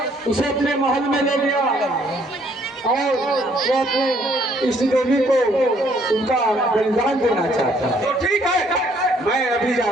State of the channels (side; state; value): both; normal; correlation 0.65